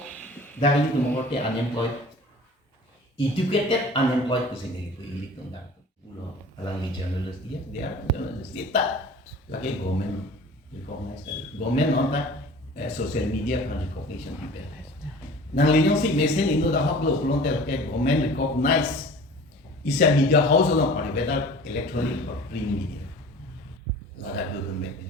dahil itu mengerti unemployed educated unemployed ku sendiri ku ilik tong dak ulo alang ni journalist dia journalist kita lagi government recognize kali government on social media kan recognition people nang linyong si mesen inu dah hak lo ulong tel ke government recognize isa media house lo pari whether electronic or print media lada government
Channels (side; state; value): both; normal; correlation 0.43